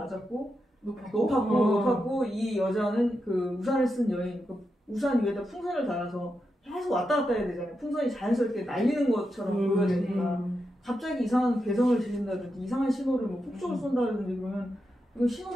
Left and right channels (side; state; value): both; normal; correlation 0.87